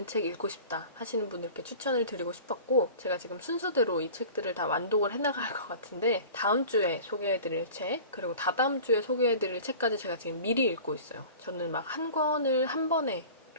책 읽고 싶다 하시는 분들께 추천을 드리고 싶었고 제가 지금 순서대로 이 책들을 다 완독을 해나갈 것 같은데 다음 주에 소개해드릴 책 그리고 다다음 주에 소개해드릴 책까지 제가 지금 미리 읽고 있어요. 저는 막 한 권을 한 번에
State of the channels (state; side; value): inverted; both; correlation -0.40